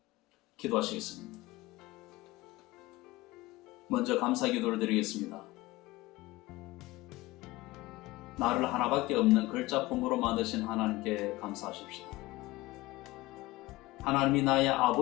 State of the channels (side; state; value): right; quieter; 19.5 dB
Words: 기도하시겠습니다. 먼저 감사 기도를 드리겠습니다. 나를 하나밖에 없는 글자품으로 만드신 하나님께 감사하십시오. 하나님이 나의